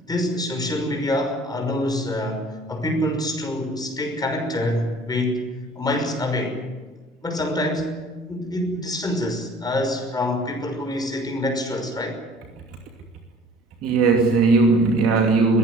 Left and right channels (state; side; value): normal; both; correlation 0.50